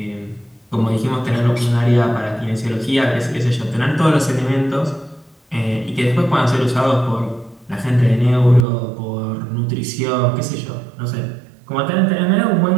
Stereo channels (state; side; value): drops out; left; at 8.7 s